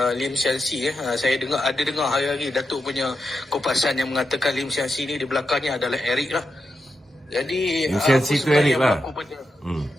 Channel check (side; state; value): both; normal; correlation 0.87